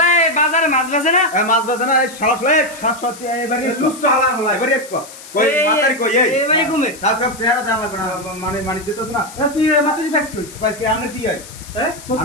এই বাজারে মাছ বেচে না এ মাছ বাজে না এই শালা শালা শাশ্বতি এবারে লুচ্ছ হালা হলা এবারে এসকো কই মাতারি কই এই এবারে ঘুমে তার সব চেহারা দেওয়া লাগবে না মানে মানি দিতেছ না তুই মাতারি পাইছ কই পাইছ কি আমরা কি হয় হ্যাঁ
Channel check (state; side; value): noise; left; hiss, 17 dB below the sound